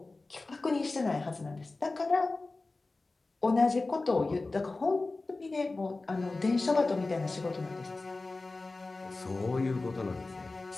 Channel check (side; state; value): right; quieter; 3.4 dB